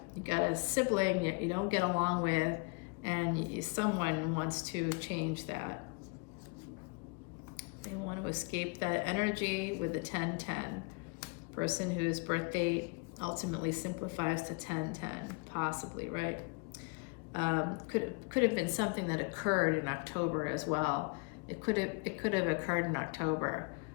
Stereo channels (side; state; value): right; quieter; 32.0 dB